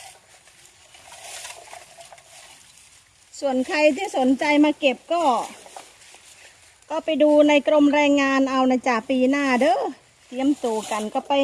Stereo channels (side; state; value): both; identical; correlation 1.00